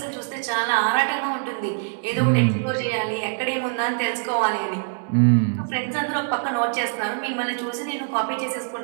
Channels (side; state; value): left; silent; 60 dB below the other